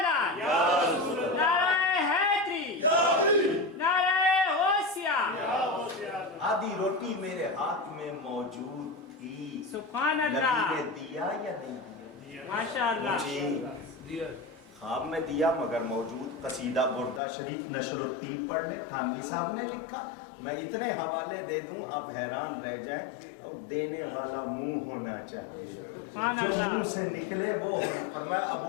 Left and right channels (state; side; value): drops out; right; at 17.2 s